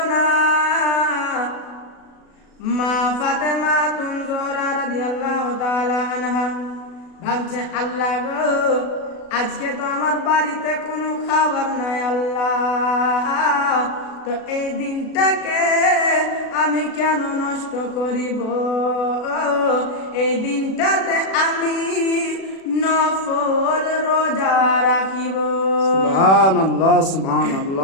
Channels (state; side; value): late; right; 37 ms